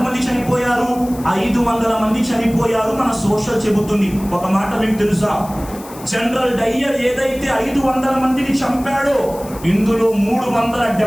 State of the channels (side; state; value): left; noise; hiss, 18 dB below the sound